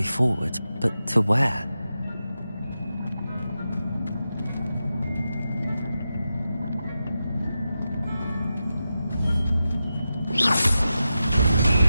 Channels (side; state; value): both; inverted; correlation -0.91